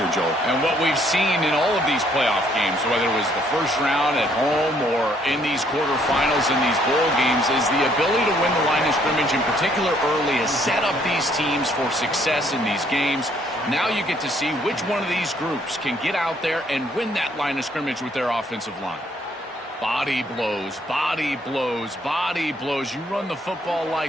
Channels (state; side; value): normal; both; correlation 0.66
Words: Joel. And what we've seen in all of these playoff games, whether it was the first round at home or in these quarterfinals in these bowl games, is the ability to win the line of scrimmage, in particular early, has set up these teams for success in these games. Now you get to see which one of these groups can get out there and win that line of scrimmage with their offensive line. Body blows, body blows, body blows. You run the football